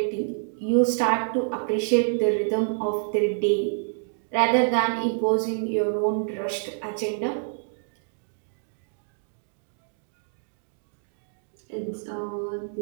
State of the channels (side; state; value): left; silent; 60 dB below the other